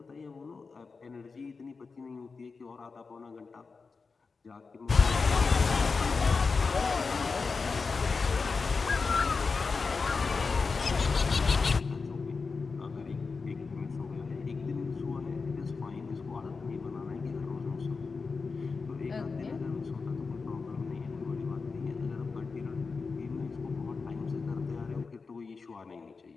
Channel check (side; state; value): right; quieter; 4.6 dB